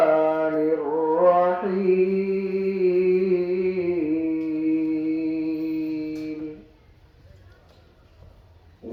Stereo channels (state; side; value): identical; both; correlation 1.00